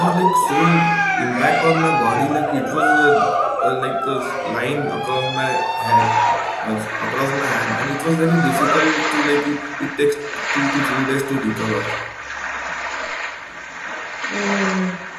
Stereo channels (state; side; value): identical; both; correlation 1.00